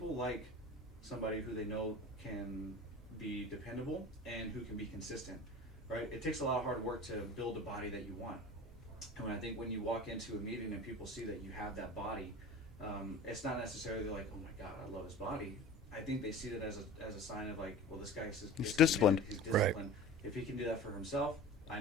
like somebody who they know can be dependable and who can be consistent, right? It takes a lot of hard work to build a body that you want. And I think when you walk into a meeting and people see that you have that body, it's not necessarily like, oh my God, I love his body. I think they see that as a sign of like, well, this guy is disciplined. He's disciplined. Right. If he can do that for himself, I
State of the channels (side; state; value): both; normal; correlation 0.37